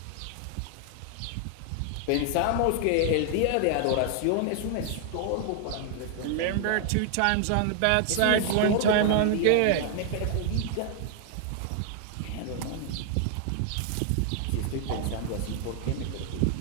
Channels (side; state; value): both; different; correlation 0.00